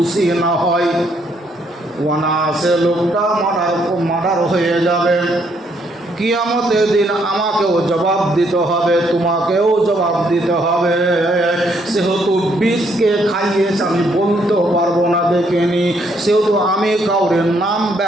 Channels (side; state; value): both; normal; correlation 0.71